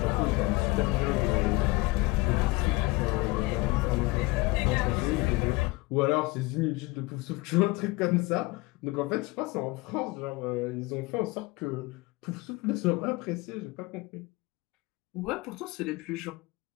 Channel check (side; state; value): right; quieter; 22.6 dB